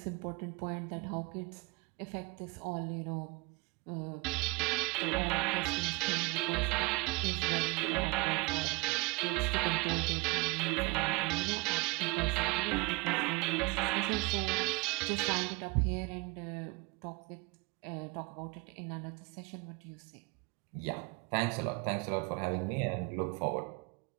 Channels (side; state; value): left; quieter; 26.6 dB